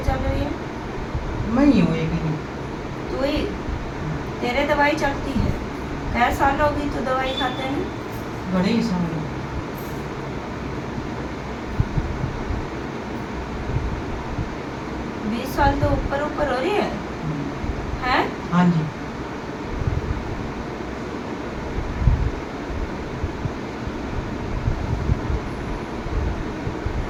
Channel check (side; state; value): both; identical; correlation 1.00